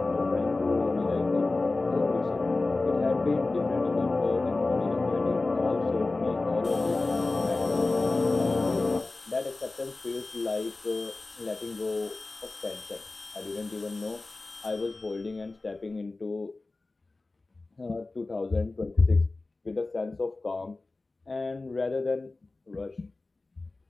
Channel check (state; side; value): quieter; right; 3.3 dB